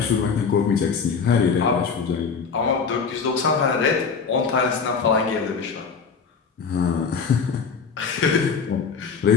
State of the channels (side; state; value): right; quieter; 5.6 dB